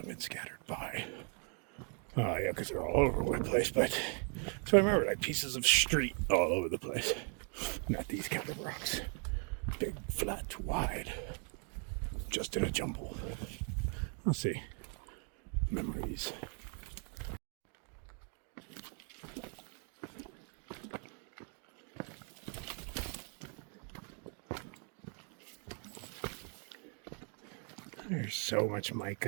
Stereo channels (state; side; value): quieter; left; 39.2 dB